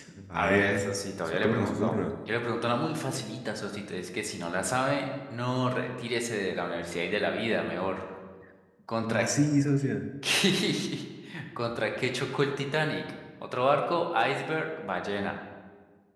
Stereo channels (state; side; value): identical; both; correlation 1.00